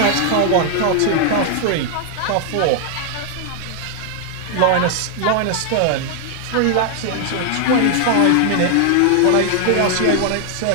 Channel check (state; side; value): different; both; correlation 0.00